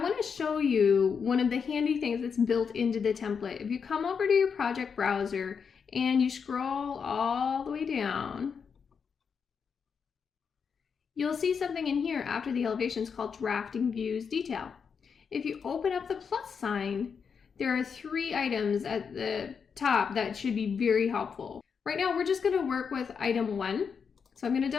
want to show you one of the handy things that's built into the template. If you come over to your project browser and you scroll all the way down, you'll see something in here after the elevations called Drafting Views Detail. If you open up the plus sign, there are 3 items at the top that should be very helpful. Right now we're just going to work with item 1. So I'm going to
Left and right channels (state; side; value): quieter; right; 6.3 dB